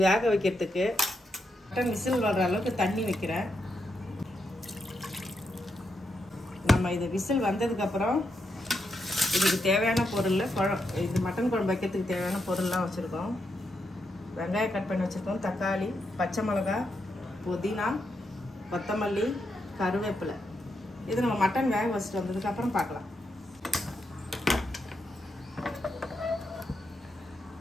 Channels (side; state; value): both; normal; correlation 0.83